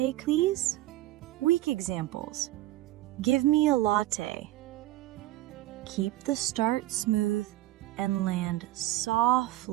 please? Weak examples. Give me a latte. Keep the start smooth and land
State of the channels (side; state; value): left; quieter; 16.2 dB